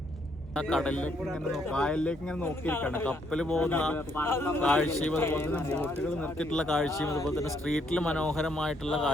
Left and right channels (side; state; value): both; normal; correlation 0.72